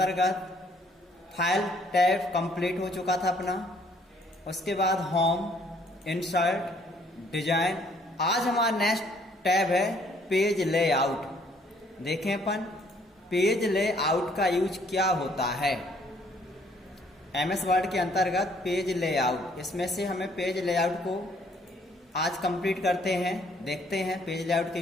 फाइल टैब कंप्लीट हो चुका था अपना। उसके बाद होम, इंसर्ट, डिजाइन। आज हमारा नेक्स्ट टैब है पेज लेआउट। देखें अपन पेज लेआउट का यूज क्या होता है। एमएस वर्ड के अंतर्गत पेज लेआउट, इसमें से हमें पेज लेआउट को आज कंप्लीट करते हैं। देखते हैं पेज लेआउट का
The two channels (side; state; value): both; normal; correlation 0.63